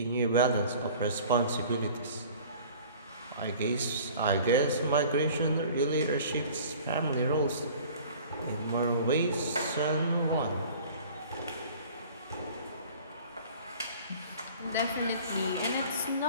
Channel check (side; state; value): both; inverted; correlation -0.46